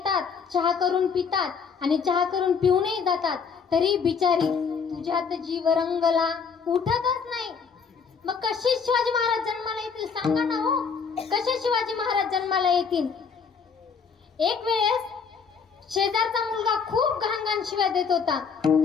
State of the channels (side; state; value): right; quieter; 5.9 dB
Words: चहा करून पितात आणि चहा करून पिऊनही जातात, तरी बिचारी तुझ्यात जीव रंगला उठतच नाही. मग कशी शिवाजी महाराज जन्माला येतील सांगा ना हो, कसे शिवाजी महाराज जन्माला येतील? एक वेळेस शेजारचा मुलगा खूप घाण शिव्या देत होता.